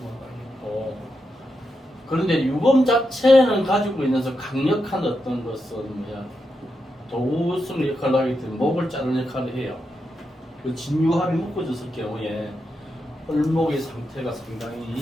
되겠고, 그런데 유금 자체는 가지고 있는 강력한 어떤 것은 뭐야? 도구성 역할을 하기 때문에 목을 자르는 역할을 해요. 그 진유합이 묶어졌을 경우에 을목의 상태가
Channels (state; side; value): normal; both; correlation 0.86